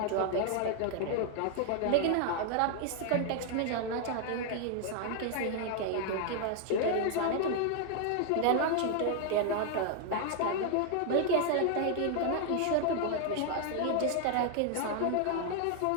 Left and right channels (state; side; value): different; both; correlation 0.00